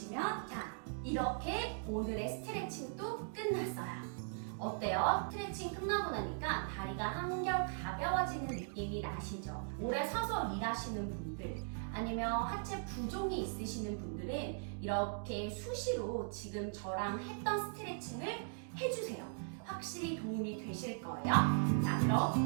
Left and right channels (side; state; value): left; silent; digital silence